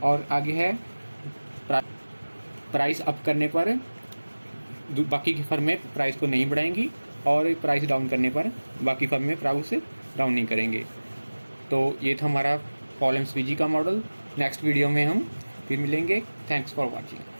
और आगे है प्राइस अप करने पर बाकी की फर्में प्राइस को नहीं बढ़ाएंगी, और प्राइस डाउन करने पर बाकी फर्में प्राइस डाउन नहीं करेंगे। तो ये था हमारा पॉल एम स्वीजी का मॉडल। नेक्स्ट वीडियो में हम फिर मिलेंगे। Thanks for watching.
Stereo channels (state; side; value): inverted; both; correlation -1.00